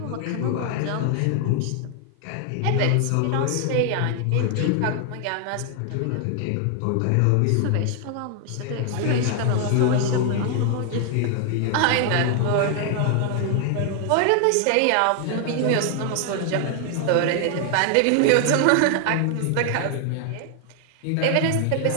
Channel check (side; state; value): both; different; correlation 0.00